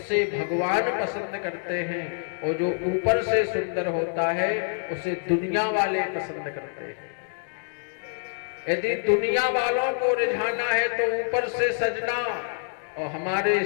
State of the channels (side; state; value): right; silent; digital silence